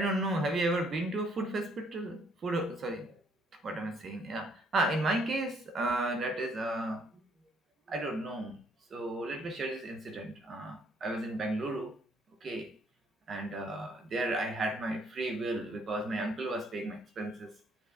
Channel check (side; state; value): both; normal; correlation 0.66